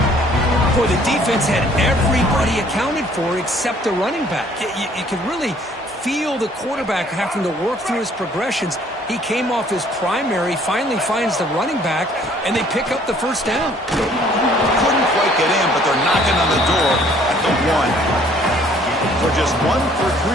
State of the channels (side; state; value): both; normal; correlation 0.59